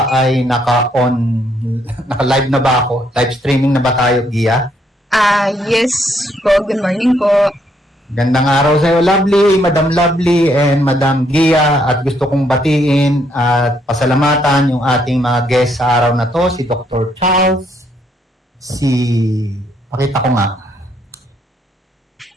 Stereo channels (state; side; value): normal; both; correlation 0.72